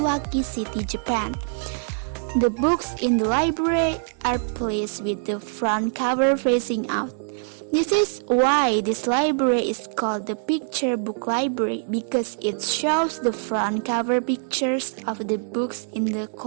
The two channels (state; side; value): silent; left; 63 dB below the other